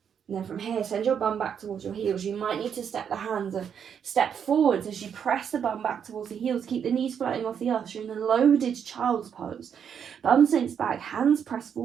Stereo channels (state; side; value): quieter; left; 7.8 dB